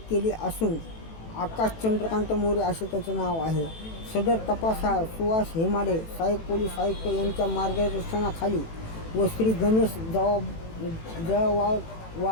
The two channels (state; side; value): late; right; 18 ms